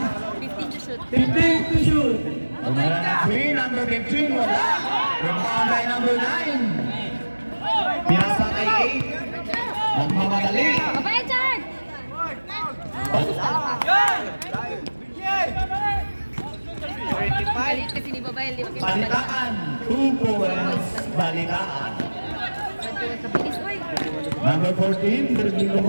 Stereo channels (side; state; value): both; inverted; correlation -1.00